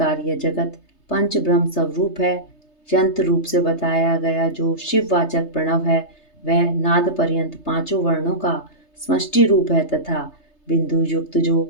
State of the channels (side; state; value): right; late; 3.3 ms